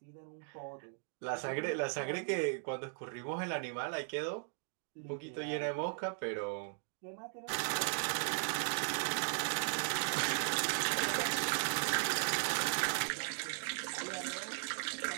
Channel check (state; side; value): silent; left; 53 dB below the other